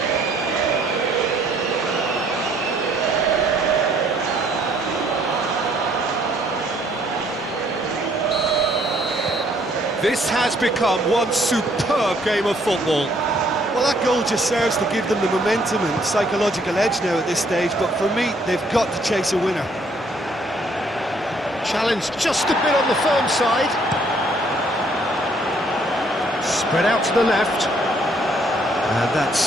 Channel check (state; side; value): normal; both; correlation 0.65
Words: This has become one superb game of football. Well, that goal just serves to give them the momentum and psychological edge now at this stage, but for me, they've got to chase a winner. Challenge just a bit on the firm side. Spread out to the left. And